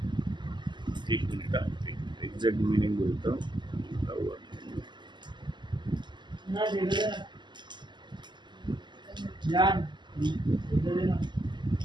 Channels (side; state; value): left; late; 0.22 ms